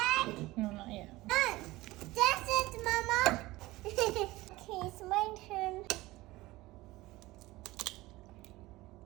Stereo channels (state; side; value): quieter; left; 19.1 dB